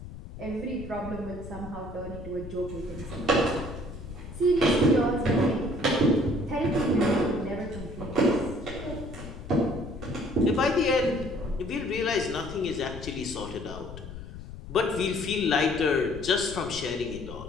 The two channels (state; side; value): noise; left; rumble, 12 dB below the sound